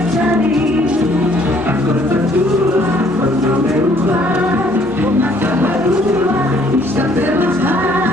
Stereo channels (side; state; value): both; normal; correlation 0.62